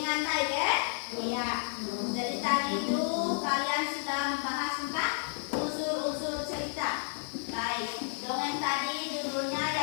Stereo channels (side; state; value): right; silent; 57 dB below the other